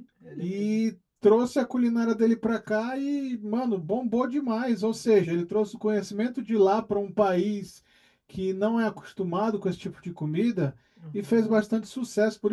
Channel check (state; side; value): identical; both; correlation 1.00